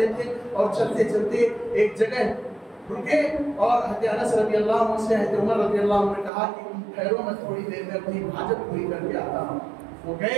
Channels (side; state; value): left; drops out; at 6.3 s